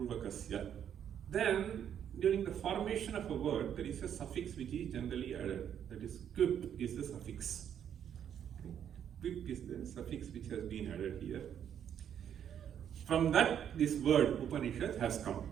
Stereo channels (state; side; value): quieter; left; 9.2 dB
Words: Then, during the formation of a word, there is a suffix which is generally added. That is, quip is the suffix. Okay. Quip is the suffix which has been added here. From that, this word Upanishad has come.